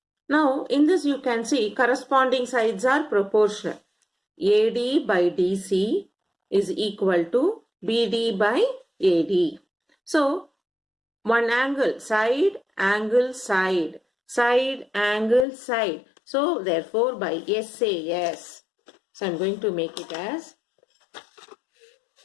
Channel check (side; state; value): right; drops out; at 15.5 s